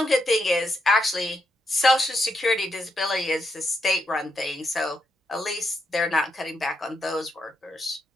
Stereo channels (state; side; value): normal; both; correlation 0.81